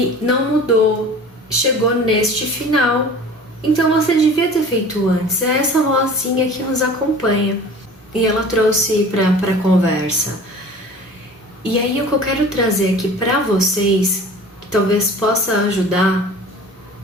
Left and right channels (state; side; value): normal; both; correlation 0.42